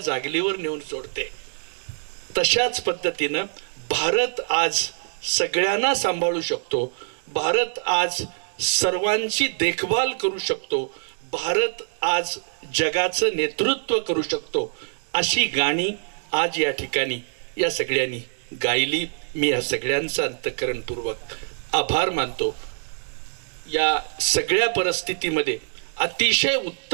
नेऊन सोडते. तशाच पद्धतीनं भारत आज सगळ्यांना सांभाळू शकतो. भारत आज सर्वांची देखभाल करू शकतो. भारत आज जगाचं नेतृत्व करू शकतो. अशी गाणी आज या ठिकाणी या सगळ्यांनी गायली. मी या सगळ्यांचा अंतःकरणपूर्वक आभार मानतो. या सगळ्या परिस्थितीमध्ये अतिशय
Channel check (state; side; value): silent; left; digital silence